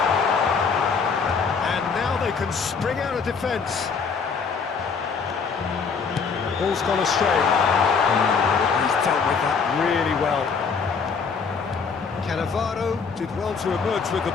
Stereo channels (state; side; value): quieter; right; 5.5 dB